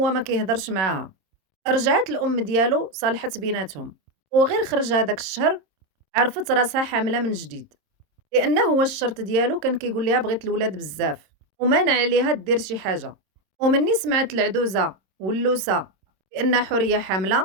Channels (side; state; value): left; late; 26 ms